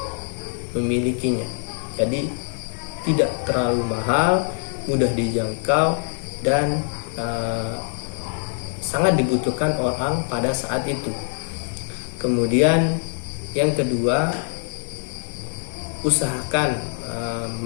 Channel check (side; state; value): right; silent; 59 dB below the other